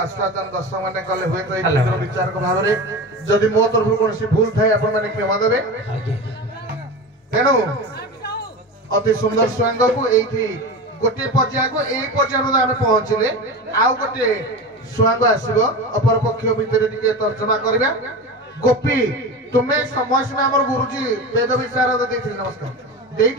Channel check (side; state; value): both; normal; correlation 0.27